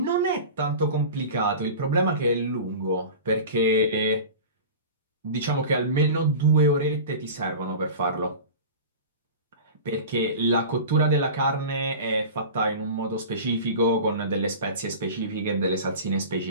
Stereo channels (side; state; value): both; inverted; correlation -0.34